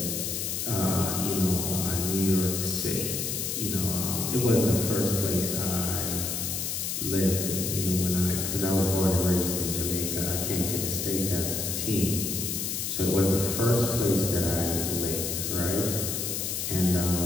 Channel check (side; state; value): left; noise; hiss, 2 dB below the sound